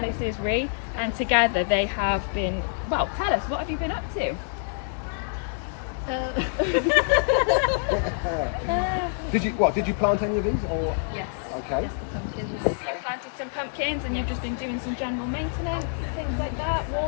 this is Ree, and together they have been, well, tell us, what have you been up to? Did you plant any of these or? Yes. Okay. Yes, the pumpkins. You planted some pumpkins and you've just been doing some general maintenance, things like that,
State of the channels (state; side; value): silent; right; digital silence